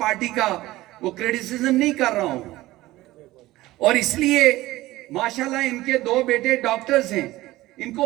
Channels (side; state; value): left; quieter; 17.5 dB